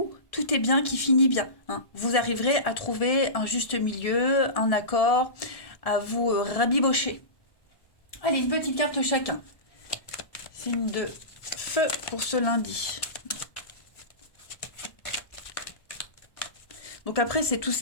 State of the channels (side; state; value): right; late; 1.1 ms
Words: tout est bien qui finit bien, hein. Vous arriverez à trouver un juste milieu, un accord, à vous rabibocher. Allez, une petite carte chacun. Signe de feu pour ce lundi. Donc après, c'est tout